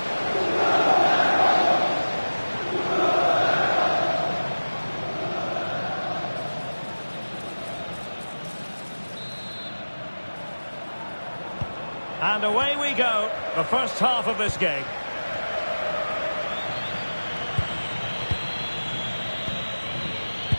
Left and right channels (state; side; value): inverted; both; correlation -1.00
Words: And away we go, the first half of this game.